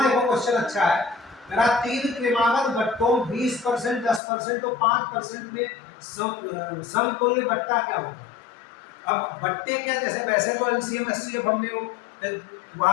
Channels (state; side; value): drops out; right; at 4.2 s